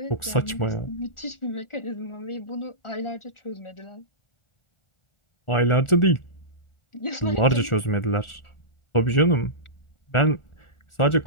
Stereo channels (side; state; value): right; late; 1.4 ms